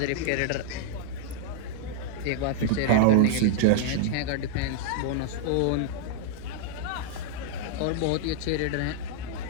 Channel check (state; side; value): different; both; correlation -0.01